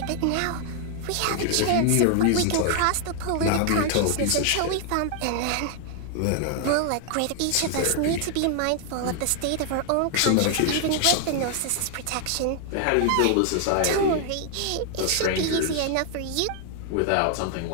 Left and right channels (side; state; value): both; different; correlation 0.00